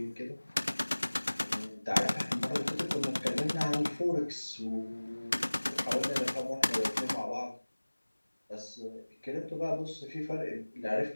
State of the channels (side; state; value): both; inverted; correlation -1.00